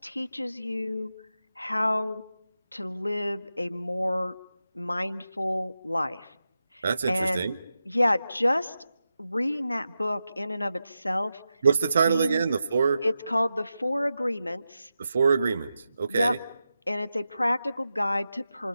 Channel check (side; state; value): both; inverted; correlation -0.90